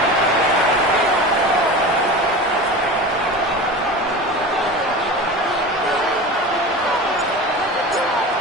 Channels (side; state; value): both; normal; correlation 0.32